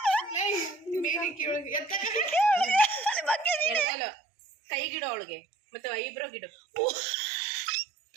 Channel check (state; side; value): drops out; left; at 3.9 s